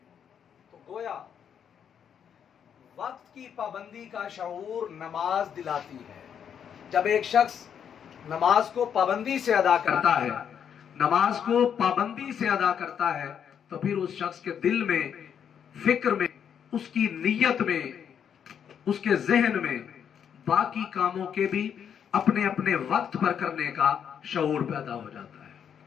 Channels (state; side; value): quieter; right; 8.2 dB